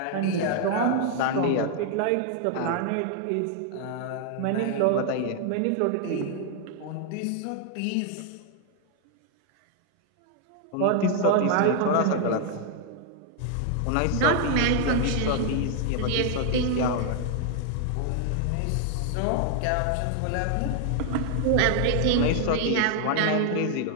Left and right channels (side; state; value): both; different; correlation 0.00